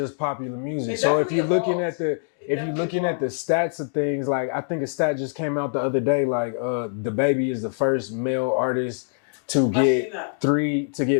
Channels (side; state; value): right; silent; digital silence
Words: popular music. So if you're looking at the stats of things, like I think a stat just came out the other day, like DaBaby is the first male artist to get